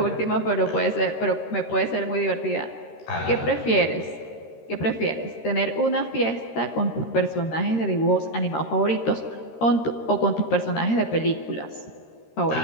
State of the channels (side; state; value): right; late; 13 ms